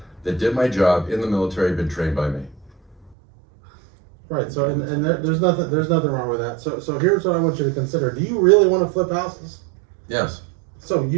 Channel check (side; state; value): left; drops out; at 3.2 s